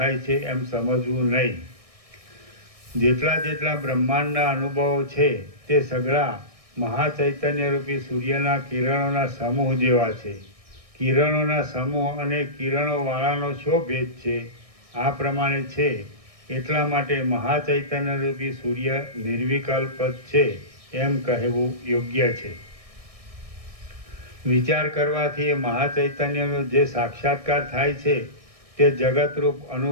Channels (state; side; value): late; left; 1.6 ms